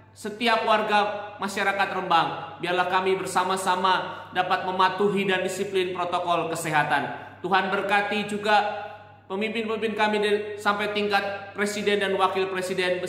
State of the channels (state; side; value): identical; both; correlation 1.00